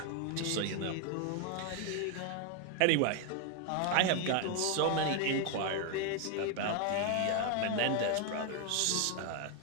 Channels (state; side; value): different; both; correlation 0.01